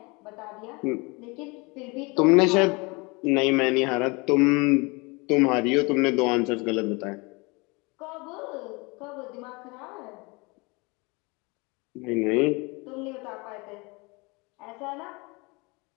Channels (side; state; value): right; quieter; 27.3 dB